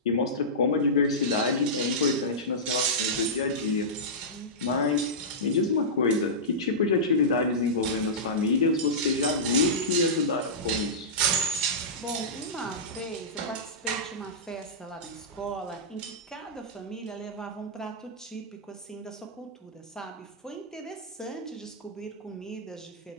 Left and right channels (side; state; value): both; normal; correlation -0.15